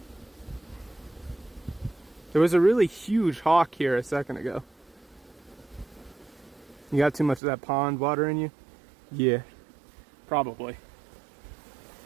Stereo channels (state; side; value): drops out; left; at 7.4 s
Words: There was a really huge hawk here a second ago. You got too much of that pond water in you? Yeah, probably.